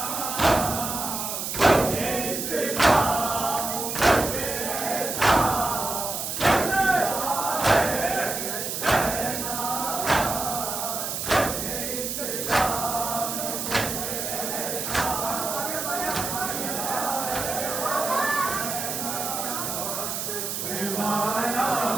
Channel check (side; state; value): right; noise; hiss, 3 dB below the sound